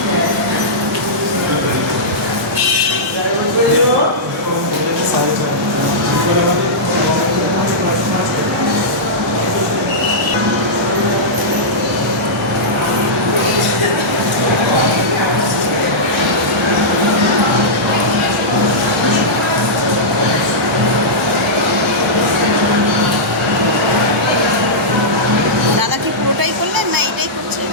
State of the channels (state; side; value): normal; both; correlation -0.12